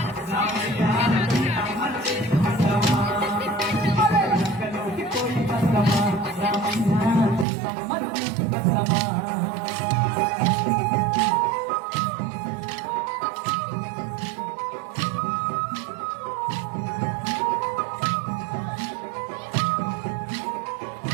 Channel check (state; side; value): drops out; left; at 7.5 s